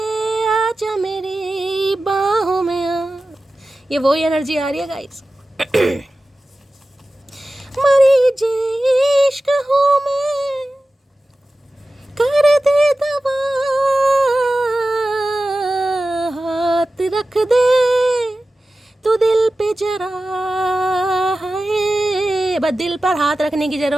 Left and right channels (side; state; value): both; normal; correlation 0.95